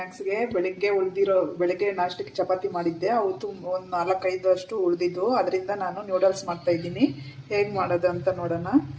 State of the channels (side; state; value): both; identical; correlation 1.00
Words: ಬೆಳಿಗ್ಗೆ ನಾಷ್ಟಕ್ಕೆ ಚಪಾತಿ ಮಾಡಿದ್ದೆ. ಅವತ್ತು ಒಂದು 4-5 ಅಷ್ಟು ಉಳಿದಿದ್ದು. ಅದರಿಂದ ನಾನು ನೂಡಲ್ಸ್ ಮಾಡ್ತಾ ಇದ್ದೀನಿ. ಹೇಗೆ ಮಾಡೋದು ಅಂತ ನೋಡೋಣ.